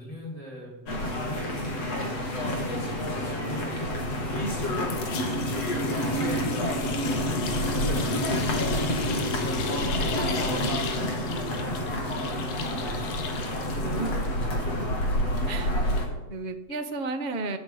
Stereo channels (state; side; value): late; right; 7.9 ms